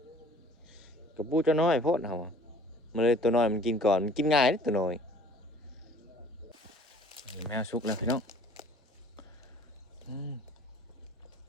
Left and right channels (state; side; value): normal; both; correlation 0.52